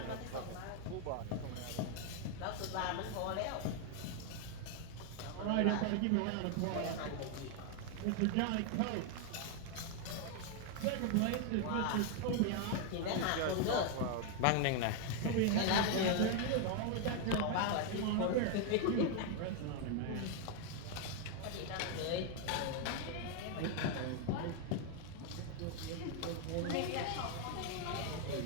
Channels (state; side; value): different; both; correlation 0.01